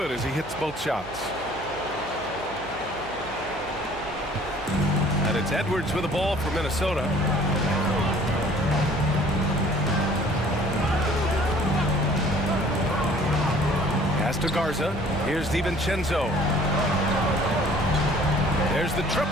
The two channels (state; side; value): noise; right; hum, 17 dB below the sound